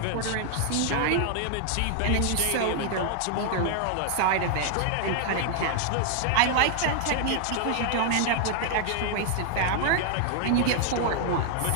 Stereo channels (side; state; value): both; different; correlation 0.00